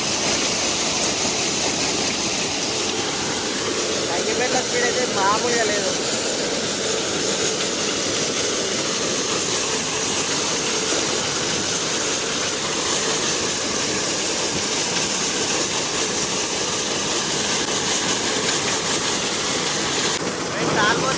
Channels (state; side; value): identical; both; correlation 1.00